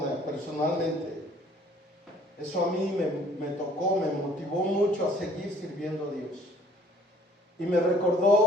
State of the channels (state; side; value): normal; both; correlation 0.57